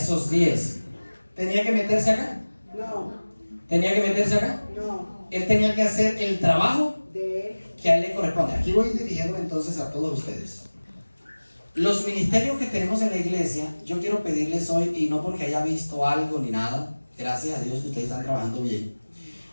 10. ¿Tenía que meterse acá? No. ¿Tenía que meterse acá? No. Él tenía que hacer el trabajo De él. que a él le corresponde. Aquí voy dirigiendo entonces a todos ustedes. Los ministerios que tenemos en la iglesia, yo quiero pedirles hoy, y no porque haya visto algo ni nada, gracias a Dios que ustedes están trabajando bien,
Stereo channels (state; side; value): inverted; both; correlation -1.00